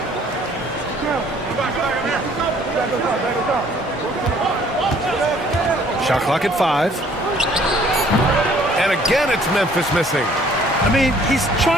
Shot clock at 5. And again, it's Memphis missing. I mean, he's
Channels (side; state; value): both; normal; correlation 0.58